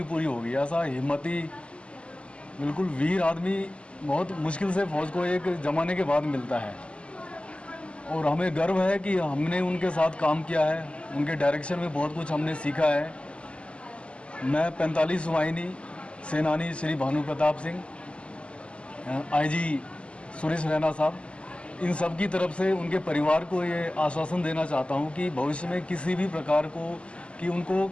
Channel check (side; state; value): right; late; 0.055 ms